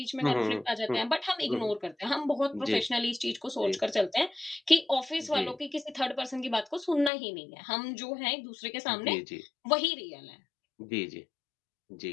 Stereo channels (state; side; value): drops out; right; at 7.1 s